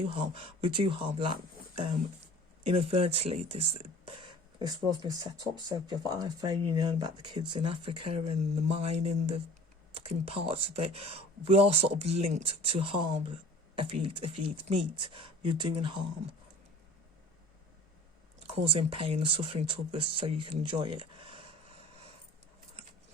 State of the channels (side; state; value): both; normal; correlation 0.45